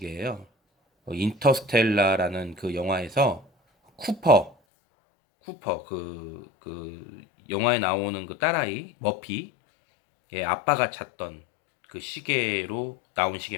인터스텔라라는 그 영화에서 쿠퍼 그 영화에 나오는 그 딸아이 머피의 아빠가 찾던 그 시계로 나온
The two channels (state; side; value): drops out; right; at 4.5 s